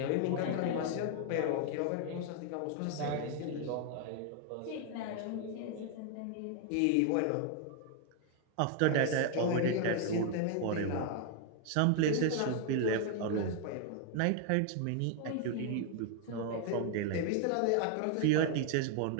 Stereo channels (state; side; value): different; both; correlation 0.00